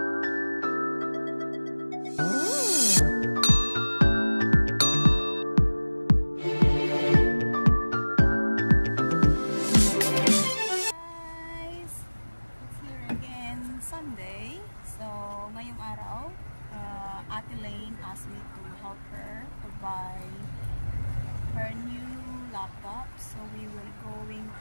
Lane asked me to help her to buy her new laptop, so we will going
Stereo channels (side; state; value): both; inverted; correlation -1.00